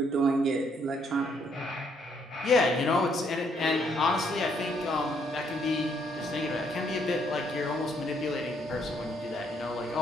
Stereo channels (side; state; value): both; normal; correlation 0.70